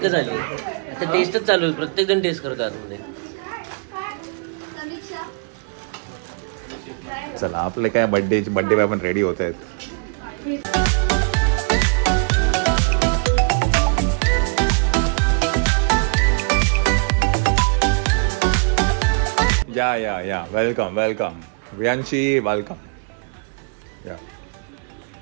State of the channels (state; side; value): quieter; left; 39.2 dB